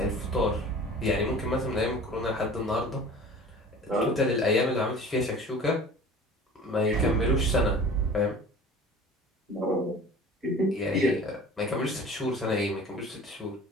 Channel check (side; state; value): both; normal; correlation 0.42